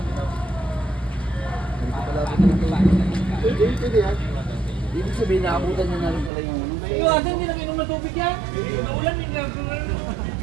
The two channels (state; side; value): drops out; left; at 6.3 s